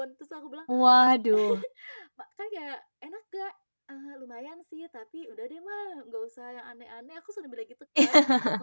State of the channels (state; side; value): inverted; both; correlation -1.00